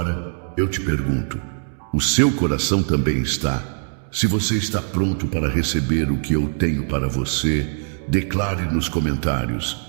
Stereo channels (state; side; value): silent; left; 64 dB below the other